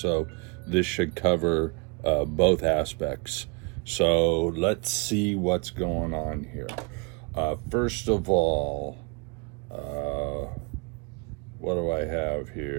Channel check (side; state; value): left; quieter; 31.6 dB